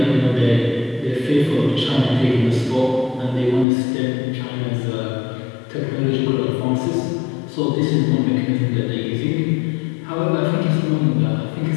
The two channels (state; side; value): drops out; right; at 3.7 s